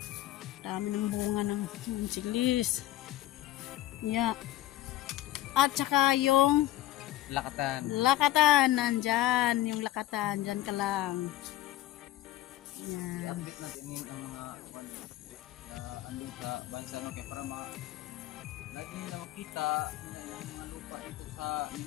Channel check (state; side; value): quieter; right; 14.5 dB